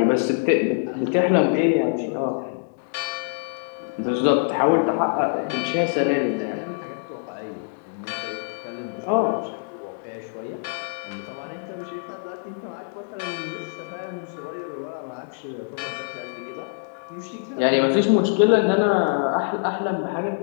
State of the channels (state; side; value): silent; right; digital silence